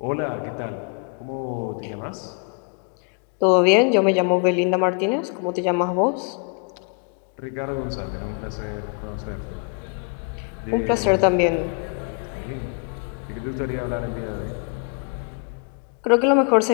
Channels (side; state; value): right; quieter; 36.4 dB